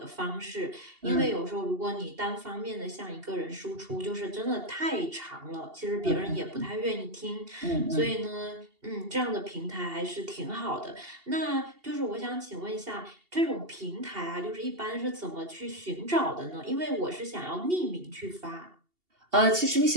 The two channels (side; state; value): left; late; 2.8 ms